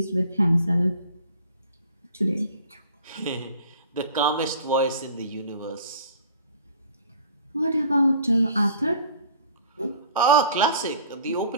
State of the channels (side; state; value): both; inverted; correlation -0.49